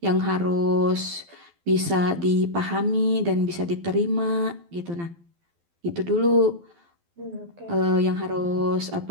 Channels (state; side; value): late; left; 12 ms